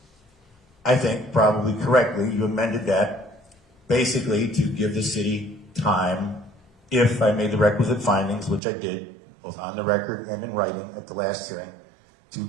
I think, probably correctly, you amended that basically to give the city time, if I made the requisite findings, which I did, both on the record and in writing at the last hearing, to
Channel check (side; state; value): left; drops out; at 8.6 s